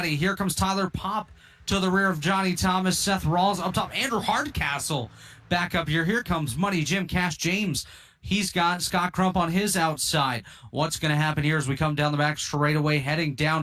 Here comes Tyler Pop to the rear of Johnny Thomas. Seth Rawls up top. Andrew Hardcastle back up here. Here comes Money Jim Cash James. He's got Scott Crump on his outside. What's going to happen here as we come down the back straightaway, heading down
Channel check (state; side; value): identical; both; correlation 1.00